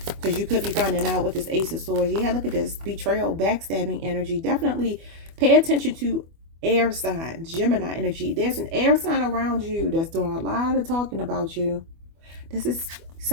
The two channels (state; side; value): late; left; 24 ms